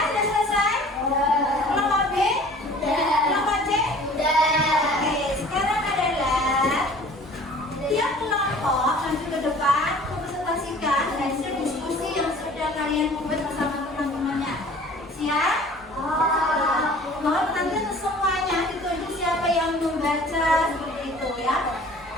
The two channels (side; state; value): both; normal; correlation 0.48